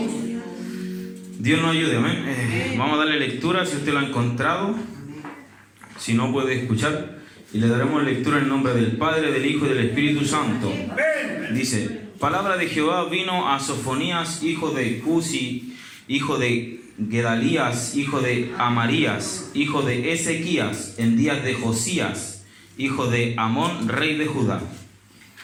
Dios nos ayude, amén. Vamos a darle lectura si usted lo ha encontrado. Si no, puede escuchar. Y le daremos lectura en nombre del Padre, del Hijo y del Espíritu Santo. Dice: palabra de Jehová vino a Sofonías, hijo de Cusi, hijo de Gedalías, hijo de Amarías, hijo de Ezequías, en días de Josías, hijo de Amón, rey de Judá.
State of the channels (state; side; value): identical; both; correlation 1.00